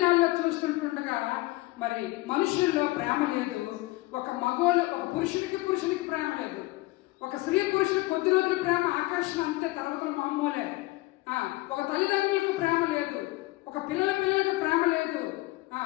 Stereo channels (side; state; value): right; quieter; 20.4 dB